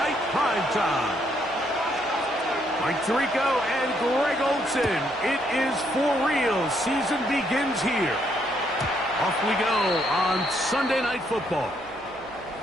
Primetime. Mike Tirico and Greg Olsen, it is for real. Season begins here. Off we go on Sunday Night Football.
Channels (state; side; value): noise; right; hum, 26 dB below the sound